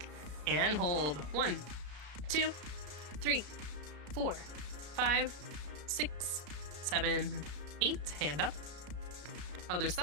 and hold. 1, 2, 3, 4, 5, 6, 7, 8. Hand up. Other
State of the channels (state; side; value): late; left; 33 ms